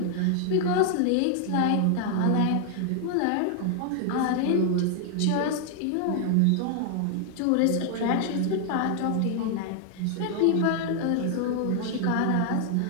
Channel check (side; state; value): both; different; correlation 0.00